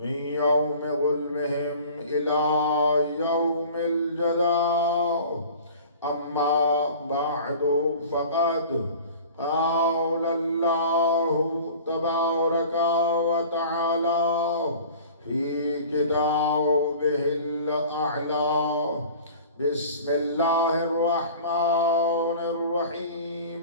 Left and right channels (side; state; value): both; inverted; correlation -0.43